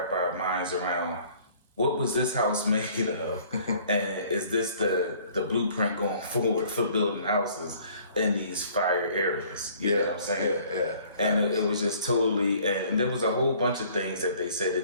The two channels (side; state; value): both; inverted; correlation -0.56